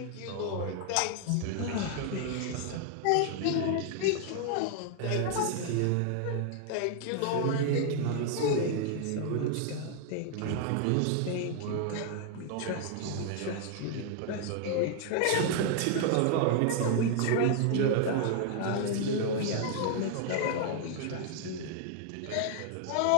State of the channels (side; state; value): both; different; correlation 0.00